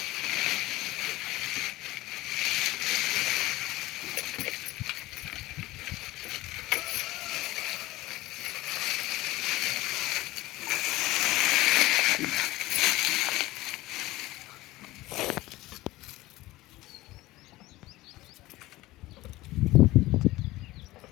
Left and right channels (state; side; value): quieter; right; 18.4 dB